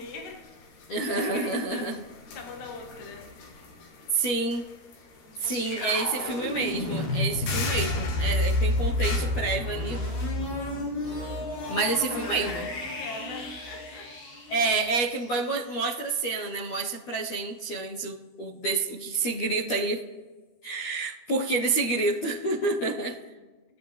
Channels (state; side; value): late; right; 12 ms